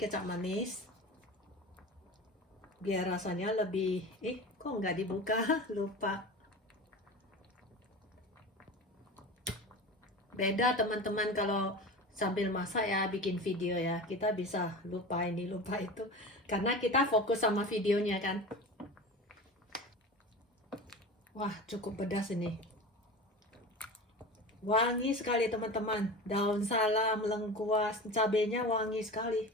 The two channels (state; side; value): normal; both; correlation 0.32